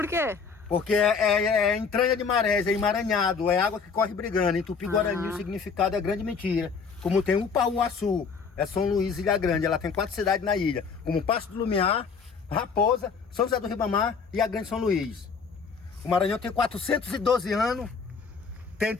quê? Porque é entranha de marés, é emaranhado, é água que corre brigando. Em Tupi-Guarani o significado é grande mentira. Como tem Upauaçu, é São Luís, Ilha Grande, ela tem 4 cidades na ilha, como Passo do Lumiar, Raposa, São José do Ribamar e a Grande São Luís. O Maranhão tem 412 anos, tem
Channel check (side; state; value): right; quieter; 5.5 dB